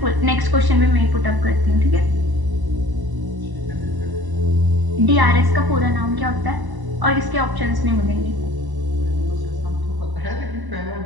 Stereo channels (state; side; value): late; left; 1.0 ms